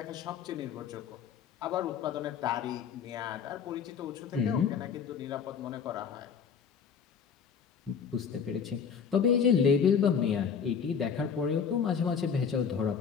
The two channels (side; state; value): right; quieter; 6.8 dB